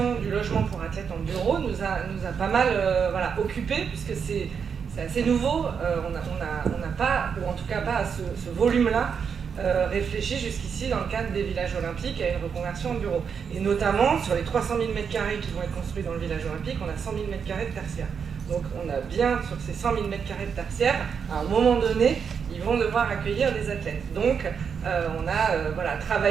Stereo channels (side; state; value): left; quieter; 6.6 dB